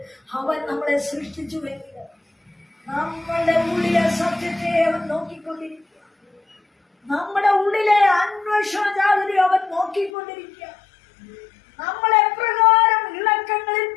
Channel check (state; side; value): drops out; right; at 10.1 s